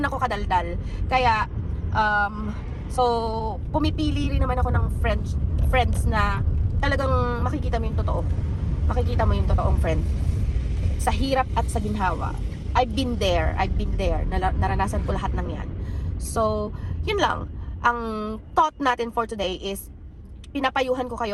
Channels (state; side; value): identical; both; correlation 1.00